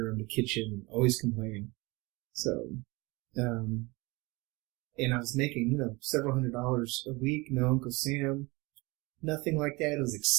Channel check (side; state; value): left; quieter; 24.6 dB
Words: the kitchen, always complaining. So, and I was making, several $100s a week. No Uncle Sam, nothing like that. It was